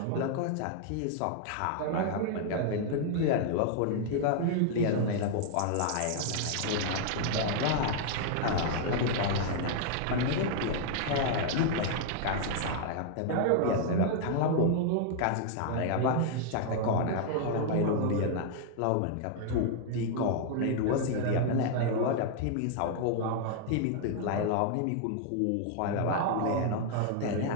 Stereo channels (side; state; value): both; different; correlation 0.00